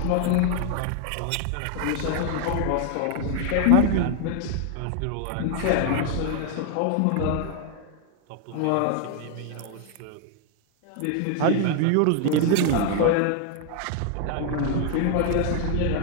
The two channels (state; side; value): different; both; correlation 0.00